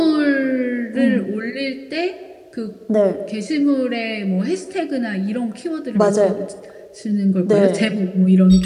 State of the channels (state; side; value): identical; both; correlation 1.00